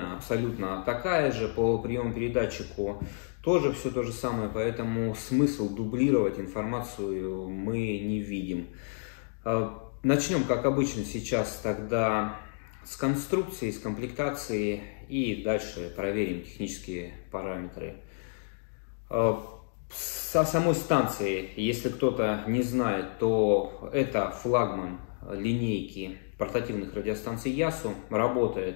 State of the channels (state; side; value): silent; right; digital silence